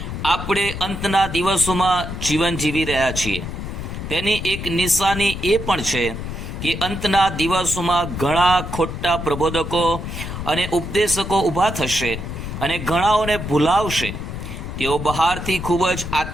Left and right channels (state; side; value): noise; left; rumble, 7 dB below the sound